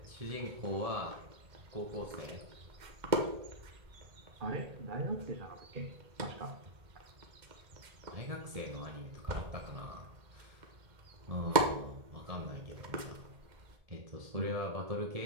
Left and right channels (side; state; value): left; late; 2.1 ms